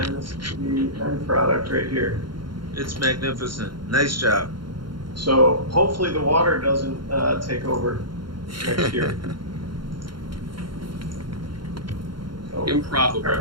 this is the end product right here. It's magnificent. Nice job. So hopefully the water doesn't take over next year. So,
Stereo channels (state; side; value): late; left; 0.73 ms